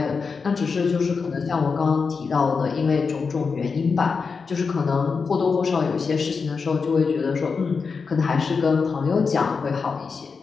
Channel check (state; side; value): quieter; right; 5.1 dB